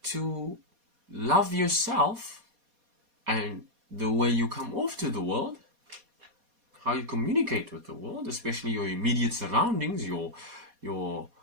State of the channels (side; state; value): left; late; 4.2 ms